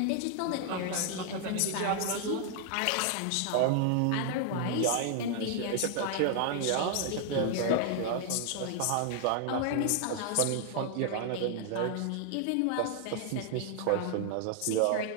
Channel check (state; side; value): different; both; correlation 0.00